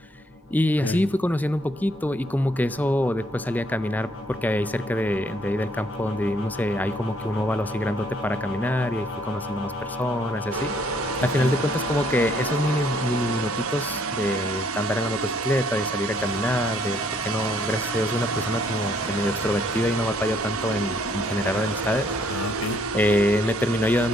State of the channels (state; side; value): normal; both; correlation 0.66